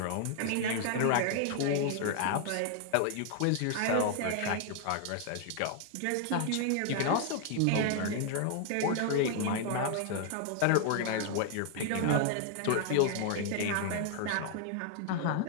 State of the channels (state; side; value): different; both; correlation 0.00